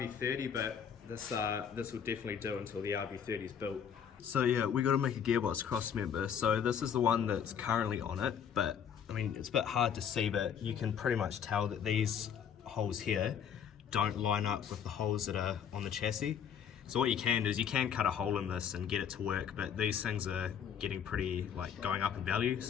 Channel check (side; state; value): right; quieter; 8.0 dB